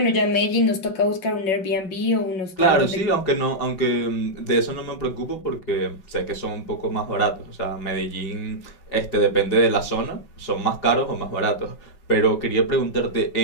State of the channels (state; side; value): late; right; 5.3 ms